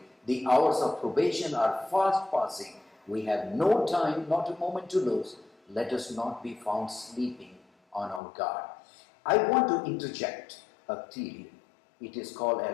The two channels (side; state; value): right; drops out; at 8.2 s